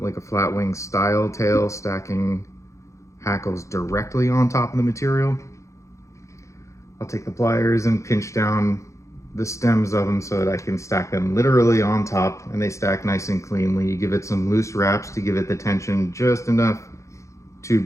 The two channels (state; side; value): late; right; 0.15 ms